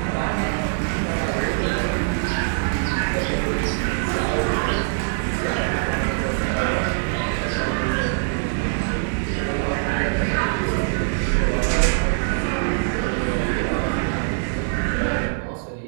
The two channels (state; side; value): silent; left; 63 dB below the other